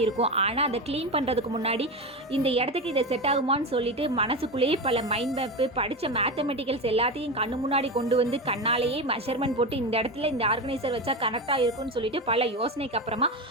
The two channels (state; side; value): normal; both; correlation 0.20